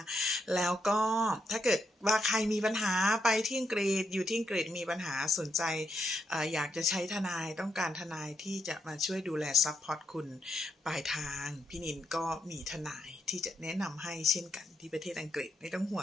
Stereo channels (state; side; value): normal; both; correlation 0.80